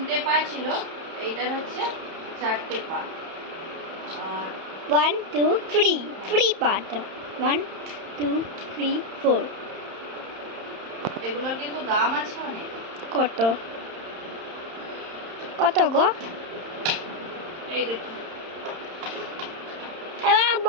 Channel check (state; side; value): late; left; 31 ms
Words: পা ছিল, এইটার হচ্ছে 4টে পা। আর 1 2 3 ফ্রি পার্ট 1 2 3 4। এগুলোর কিন্তু দাম আছে অনেক। কত কত গো? এই দেখুন, এবার